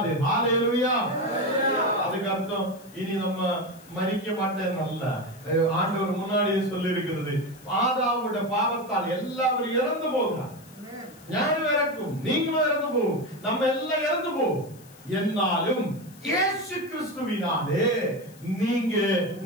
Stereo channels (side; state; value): left; noise; hiss, 24 dB below the sound